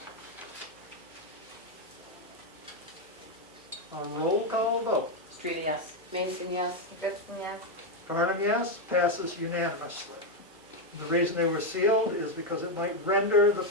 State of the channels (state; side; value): normal; both; correlation 0.04